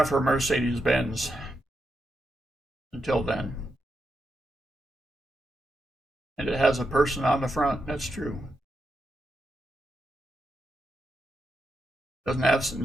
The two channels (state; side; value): normal; both; correlation 0.84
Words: her Mercedes Benz. Until then. And it has a person on the front. That's true. Doesn't have,